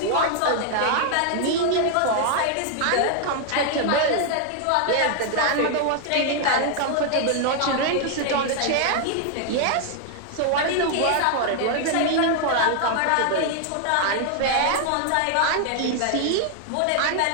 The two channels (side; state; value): both; different; correlation 0.00